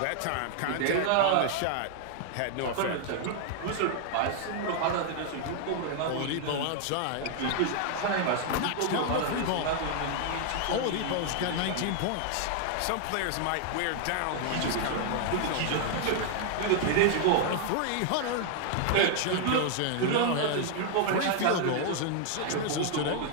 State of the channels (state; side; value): different; both; correlation 0.00